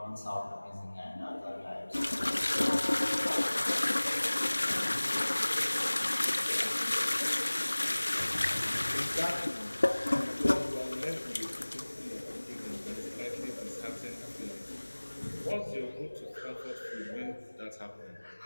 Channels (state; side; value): inverted; both; correlation -1.00